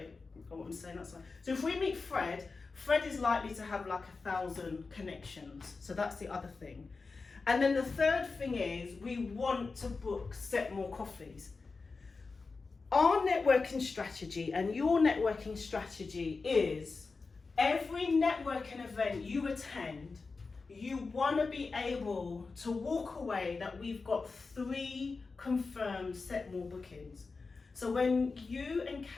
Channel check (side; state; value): right; quieter; 4.2 dB